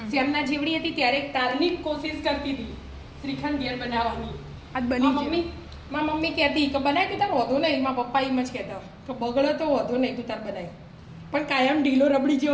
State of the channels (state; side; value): identical; both; correlation 1.00